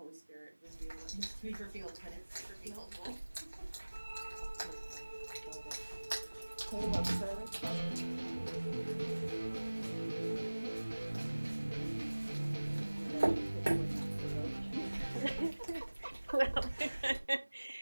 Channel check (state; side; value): inverted; both; correlation -1.00